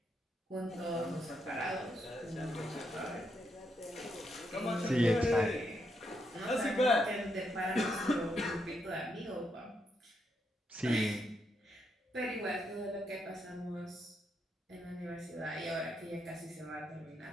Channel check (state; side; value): normal; both; correlation 0.80